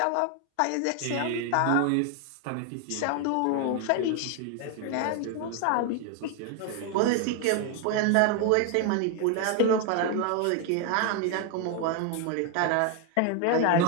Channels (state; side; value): different; both; correlation 0.01